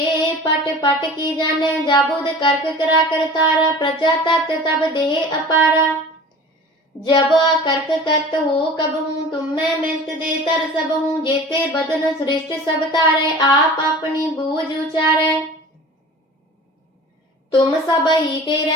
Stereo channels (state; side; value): normal; both; correlation 0.40